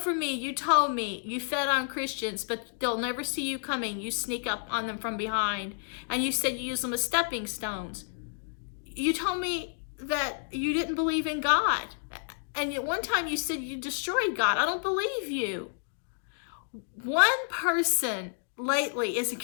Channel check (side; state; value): right; silent; digital silence